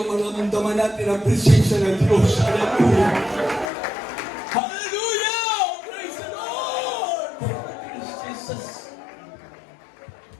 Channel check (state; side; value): drops out; right; at 3.7 s